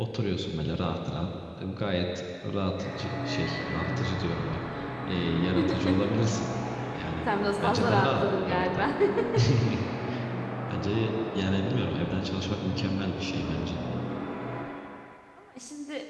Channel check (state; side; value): identical; both; correlation 1.00